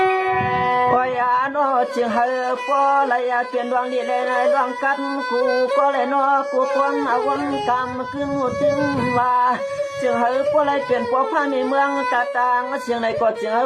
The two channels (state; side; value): identical; both; correlation 1.00